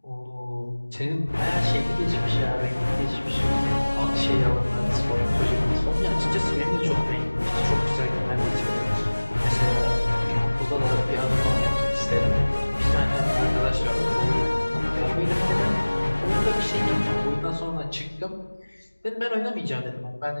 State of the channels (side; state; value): both; inverted; correlation -1.00